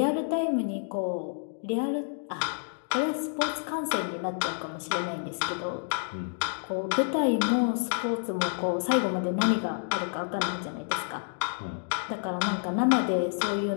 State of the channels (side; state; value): right; silent; digital silence